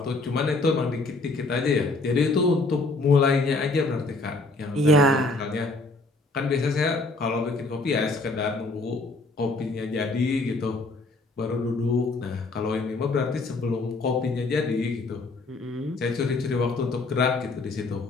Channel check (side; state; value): right; quieter; 3.2 dB